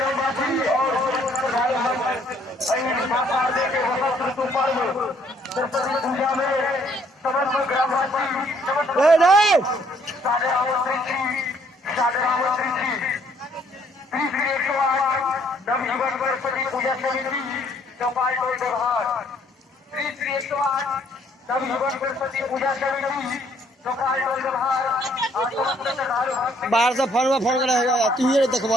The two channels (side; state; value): both; normal; correlation 0.65